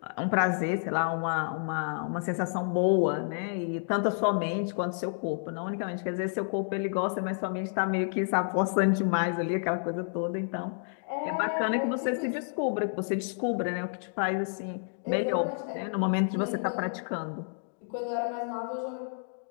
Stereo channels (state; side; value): silent; right; digital silence